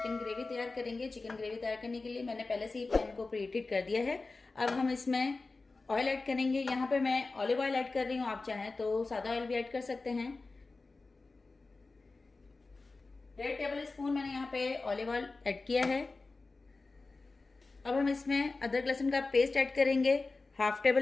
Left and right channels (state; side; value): quieter; right; 3.7 dB